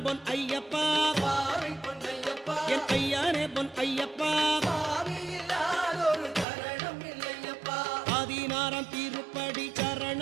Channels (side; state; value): left; drops out; at 6.5 s